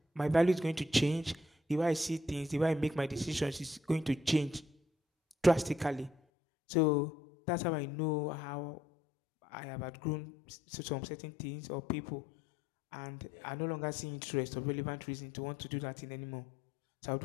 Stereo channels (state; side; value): drops out; right; at 6.2 s